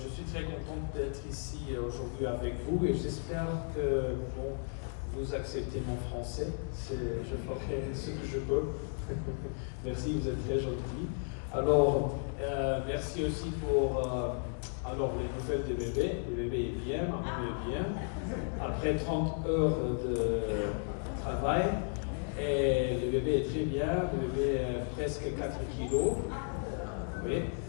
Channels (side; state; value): right; silent; 55 dB below the other